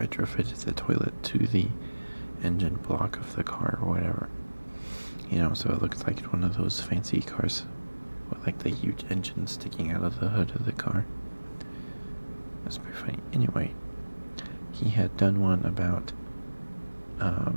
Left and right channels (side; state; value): both; inverted; correlation -1.00